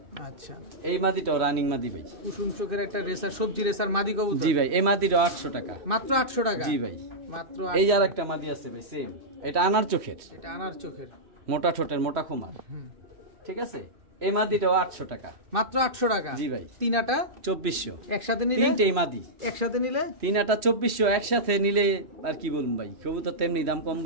আচ্ছা, এই মাদিটাও রানিং মাদি ভাই, কুসুম চোখের একটা রেসার, সবজি রেসার মাদি কবুতর। জি ভাই, এই মাদিটাও 800 টাকা মাত্র। 800 টাকা। জি ভাই, মাত্র। এই আর একটা মাদি আছে ভাই সেম, এটা আনার চোখের, মোটা ঠোঁটের, মোটা খুমার, ঠিক আছে। এই মাদিটাও 800 টাকা মাত্র। 800 টাকা। জি ভাই, তিনাটা 2400 একসাথে নিলে। তিনটেই মাদি একসাথে নিলে তিনাটা 2400, একসাথে নিলে আর কি বলুন ভাই, কবুতর তেমনি দাম কম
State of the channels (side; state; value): left; late; 3.1 ms